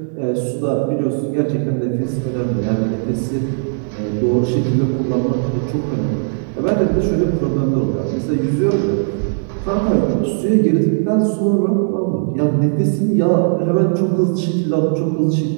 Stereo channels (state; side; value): silent; left; digital silence